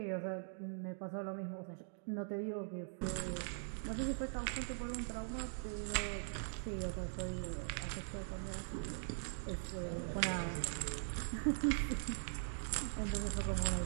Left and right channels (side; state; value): left; silent; digital silence